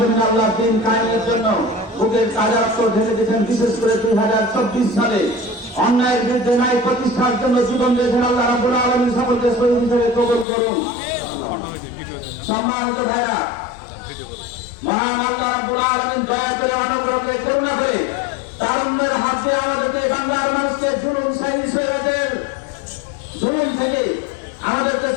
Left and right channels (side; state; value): right; drops out; at 10.5 s